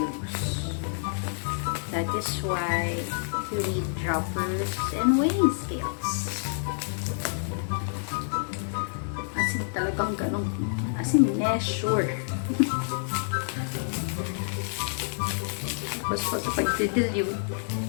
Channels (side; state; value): right; silent; 59 dB below the other